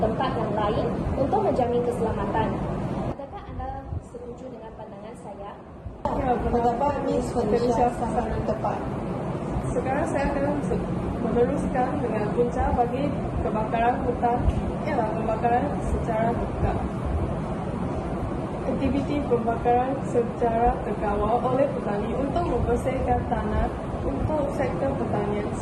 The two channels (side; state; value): both; identical; correlation 1.00